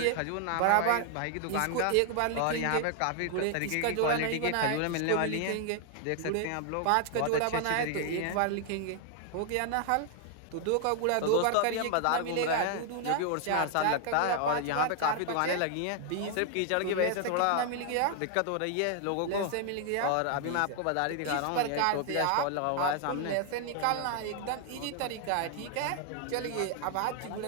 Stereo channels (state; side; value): different; both; correlation 0.00